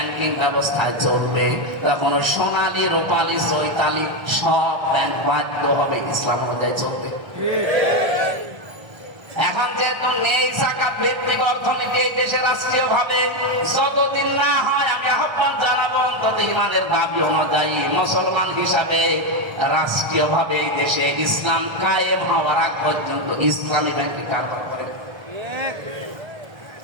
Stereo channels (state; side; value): late; left; 1.3 ms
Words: ব্যবস্থায় চলবে, তখন ওই সোনালী, রূপালী, চৈতালি সব ব্যাংক বাধ্য হবে ইসলাম অনুযায়ী চলবে। এখন যেহেতু নেই যাকাত ভিত্তিক অর্থনীতি এই দেশে রাষ্ট্রীয় ভাবে, যতদিন না হয় আমি আহ্বান জানাবো অন্তত ইমানের দাবি অনুযায়ী মুসলমান হিসাবে রাষ্ট্রীয় ভাবে এই দেশে ইসলাম কায়েম হওয়ার আগ পর্যন্ত ইসলামী ব্যাংকে কারবার করে।